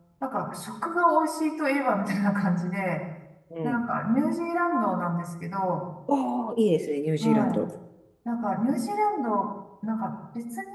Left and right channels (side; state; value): both; identical; correlation 1.00